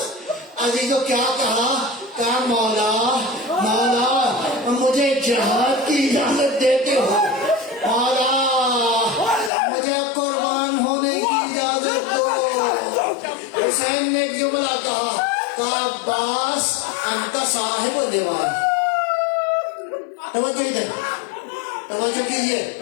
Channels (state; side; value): drops out; right; at 9.5 s